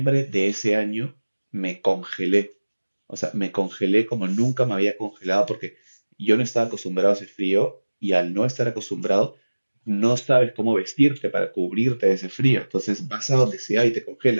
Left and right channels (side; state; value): both; inverted; correlation -1.00